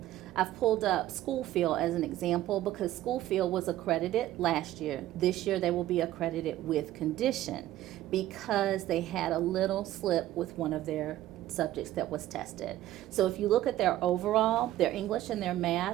I've pulled up Schoolfield as an example because Schoolfield was accredited last year. This year they will be accredited with condition because they had a little slip with one of their subjects that was tested. So if you look at their overall, their English and their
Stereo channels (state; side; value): quieter; left; 14.2 dB